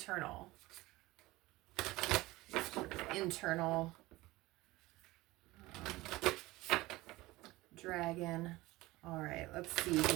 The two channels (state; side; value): quieter; left; 19.5 dB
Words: Dragon. All right, let's see